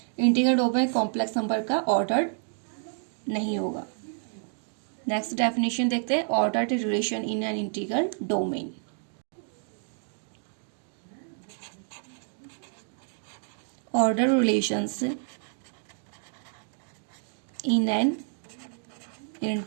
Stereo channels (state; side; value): silent; left; 56 dB below the other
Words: Integral domain complex number का ऑर्डर नहीं होगा। नेक्स्ट डेफिनेशन देखते हैं ordered relation in an integral domain. Order relations in an